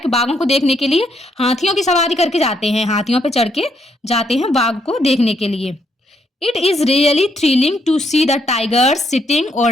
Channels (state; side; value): normal; both; correlation 0.74